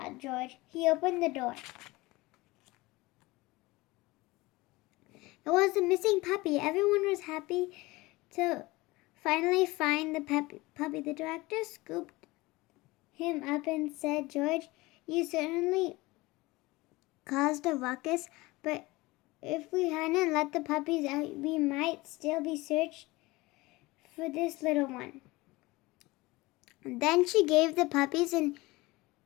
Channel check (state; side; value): quieter; right; 21.4 dB